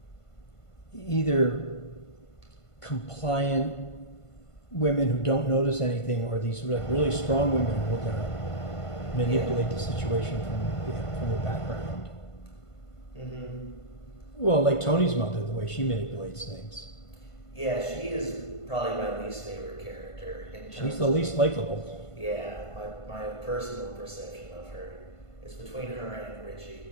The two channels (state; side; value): late; right; 1.5 ms